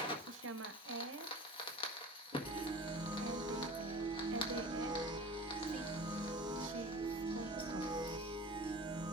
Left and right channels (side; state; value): both; normal; correlation 0.38